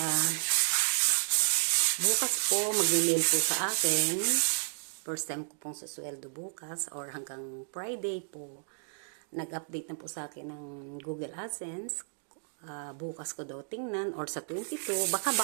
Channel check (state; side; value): silent; left; digital silence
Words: At, bukas po, mag-mail po sa akin. First time ko pong susweldo bukas or hanggang Friday po. Nag-update na po sa akin ng Google AdSense. Bukas ko daw tingnan or sa 22. Baka